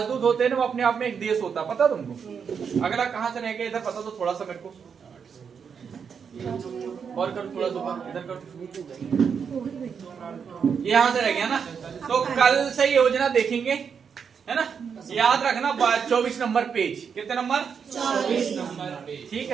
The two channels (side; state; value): left; quieter; 6.6 dB